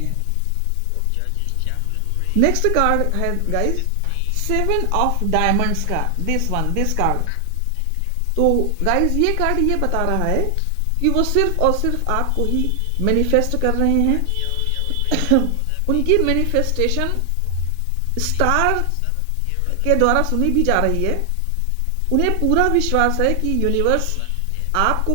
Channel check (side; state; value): both; different; correlation 0.00